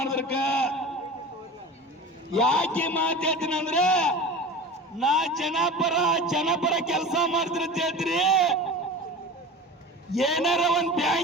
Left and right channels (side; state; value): both; normal; correlation 0.34